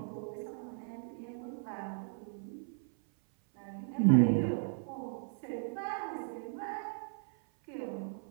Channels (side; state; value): left; silent; 54 dB below the other